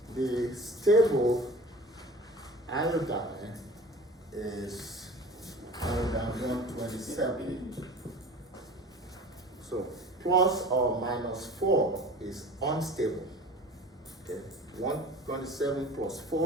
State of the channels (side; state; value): both; normal; correlation 0.40